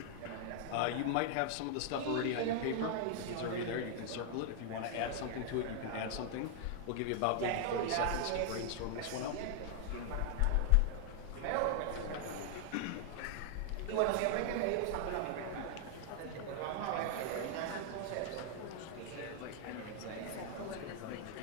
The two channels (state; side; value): different; both; correlation 0.00